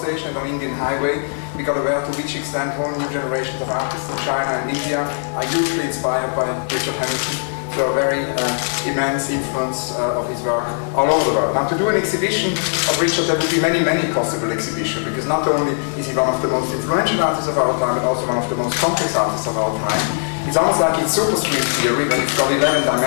and on Indian Highway, we got aware to which extent whole new generations of artists in China and India are hugely inspired by Richard Hamilton. So a very immense influence of his work all over the world. Now, to do an exhibition of Richard, there would be many, many possible exhibitions, because not only is he one of the most influential artists of our time, but also one of the most complex artists of our time. It's almost like it's superscript theory, but it's got 11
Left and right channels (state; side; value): silent; right; digital silence